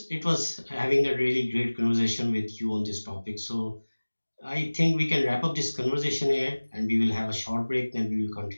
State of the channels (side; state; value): both; inverted; correlation -1.00